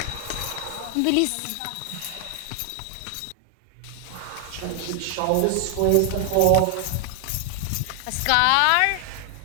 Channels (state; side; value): different; both; correlation 0.00